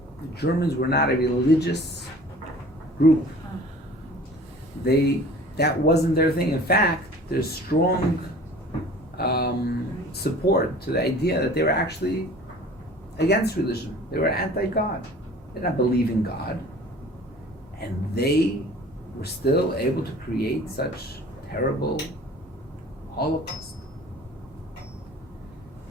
The Germans were not a religious group. That wasn't their thing. In fact, there's strong support to the idea that they were actually against religion. They were anti-God. They did not believe in God. And they were still able to create such terrible Holocaust.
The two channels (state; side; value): normal; both; correlation 0.46